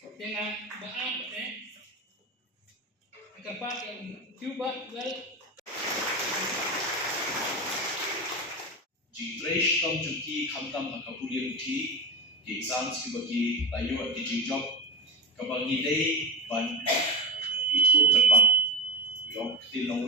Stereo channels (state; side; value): normal; both; correlation 0.20